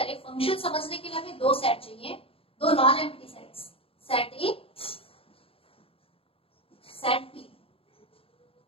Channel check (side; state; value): right; late; 0.27 ms